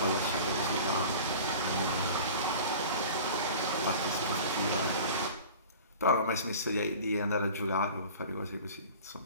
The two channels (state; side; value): inverted; both; correlation -0.40